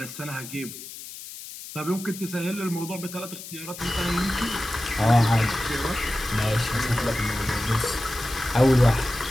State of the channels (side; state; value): left; noise; hiss, 13 dB below the sound